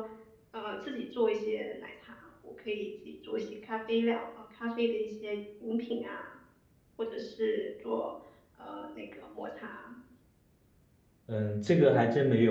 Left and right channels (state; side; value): identical; both; correlation 1.00